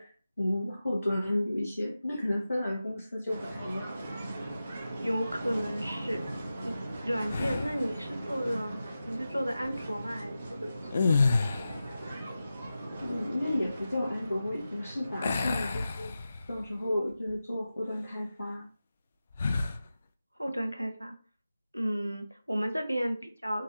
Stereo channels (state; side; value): inverted; both; correlation -0.93